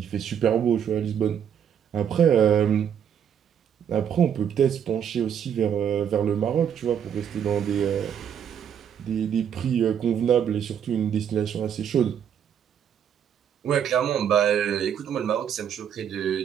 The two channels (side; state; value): left; quieter; 8.6 dB